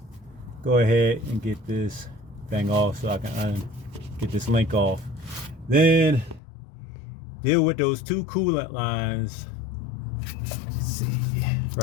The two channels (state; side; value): drops out; right; at 6.4 s